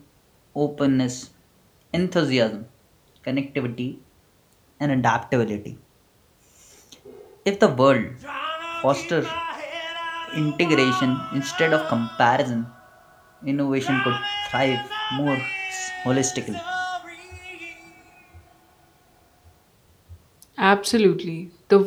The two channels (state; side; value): identical; both; correlation 1.00